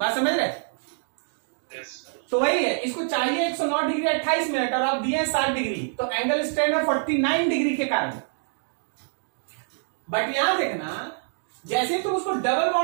समझ रहे? तो वही है, इसको चाहिए 109 डिग्री 28 मिनट और आप दिए हैं 60 डिग्री, तो एंगल स्ट्रेन है 49 डिग्री के कारण। बट यहां देखना, जैसे तुम उसको डबल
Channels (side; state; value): left; silent; digital silence